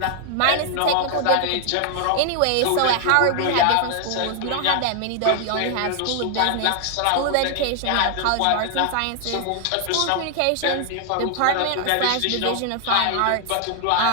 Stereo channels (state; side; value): different; both; correlation 0.00